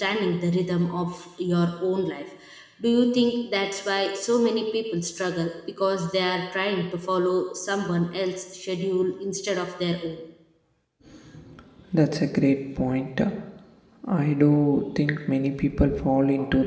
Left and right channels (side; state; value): both; identical; correlation 1.00